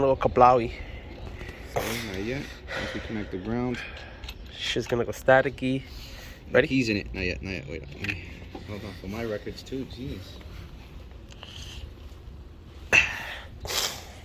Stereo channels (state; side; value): identical; both; correlation 1.00